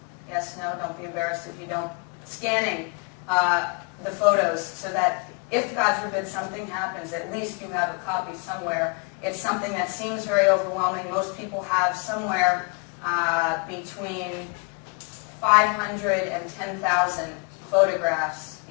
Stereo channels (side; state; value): right; quieter; 34.2 dB